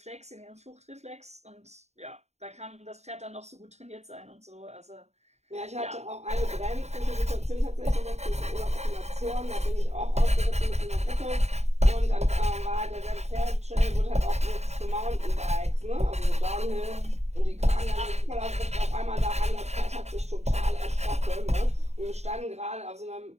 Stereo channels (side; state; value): left; late; 0.32 ms